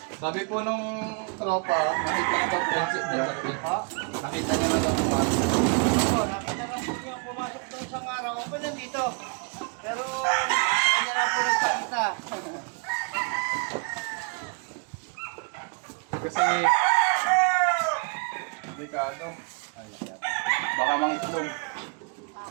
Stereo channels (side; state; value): left; quieter; 35.0 dB